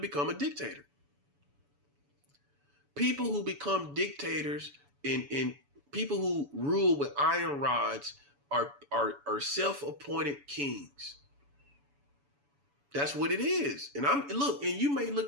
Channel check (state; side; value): late; left; 7.0 ms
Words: a dictator. People who become dictators and people who rule with iron rods are self-appointed kings. That's what it is. And you may